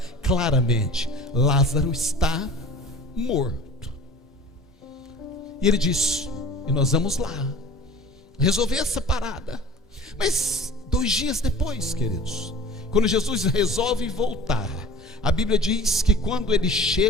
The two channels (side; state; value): both; normal; correlation 0.43